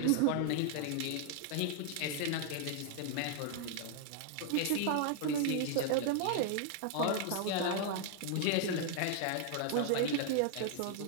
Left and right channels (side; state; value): both; different; correlation 0.00